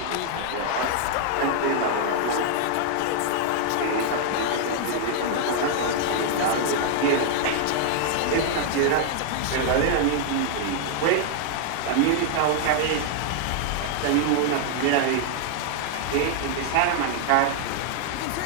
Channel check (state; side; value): different; both; correlation -0.01